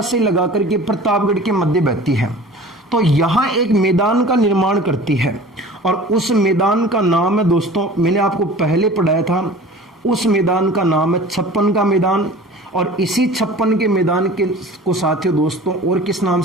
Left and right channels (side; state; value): both; normal; correlation 0.42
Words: से लगा करके प्रतापगढ़ के मध्य बहती है, तो यहां एक मैदान का निर्माण करती है। और उस मैदान का नाम है दोस्तों, मैंने आपको पहले पढ़ाया था, उस मैदान का नाम है छप्पन का मैदान। और इसी छप्पन के मैदान के को साथियों दोस्तों और किस नाम